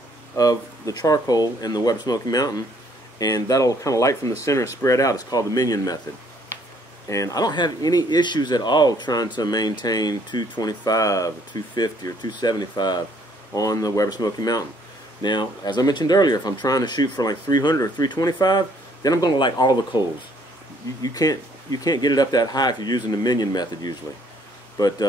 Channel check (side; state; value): both; normal; correlation 0.64